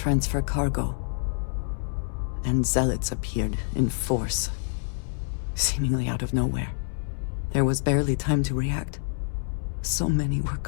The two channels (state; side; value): silent; right; 60 dB below the other